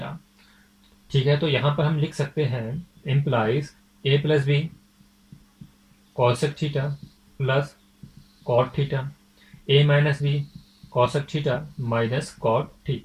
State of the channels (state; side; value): identical; both; correlation 1.00